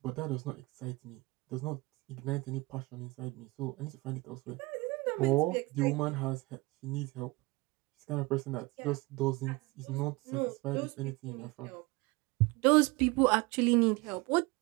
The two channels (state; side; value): quieter; left; 24.0 dB